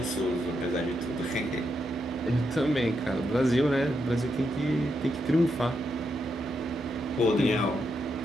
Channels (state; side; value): normal; both; correlation 0.82